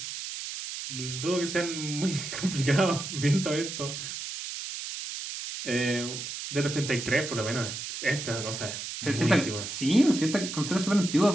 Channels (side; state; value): right; noise; hiss, 7 dB below the sound